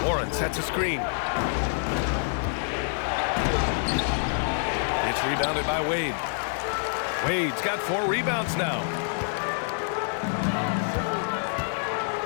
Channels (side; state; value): right; silent; digital silence